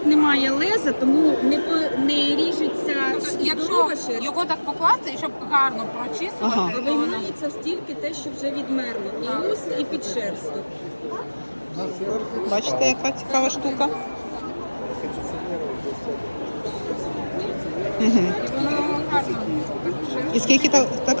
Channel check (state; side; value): inverted; both; correlation -1.00